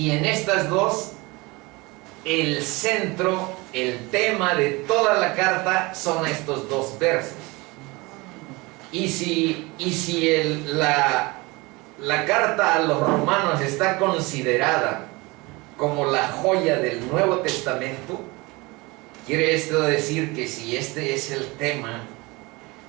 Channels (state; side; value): quieter; left; 24.4 dB